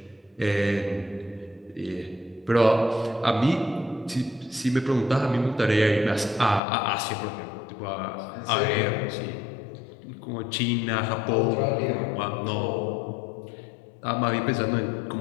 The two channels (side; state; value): right; drops out; at 6.6 s